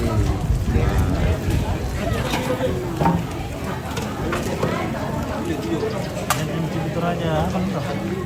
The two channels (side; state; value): both; identical; correlation 1.00